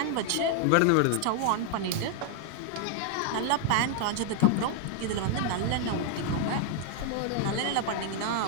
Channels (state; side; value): different; both; correlation 0.00